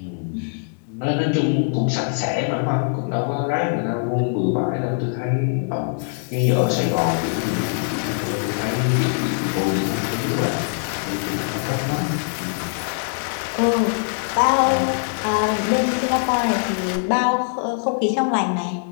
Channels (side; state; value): right; silent; 64 dB below the other